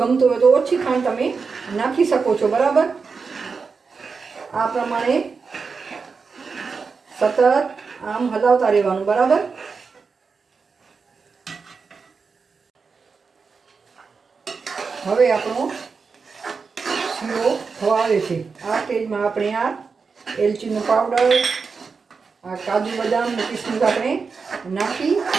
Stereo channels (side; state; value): left; quieter; 5.0 dB